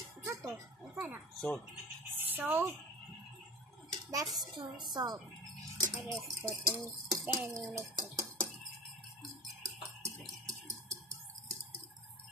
Unsa to? Unsa na? Salt. Salt. That's too salt. I just put in. Then you mix it.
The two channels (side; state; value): both; normal; correlation 0.34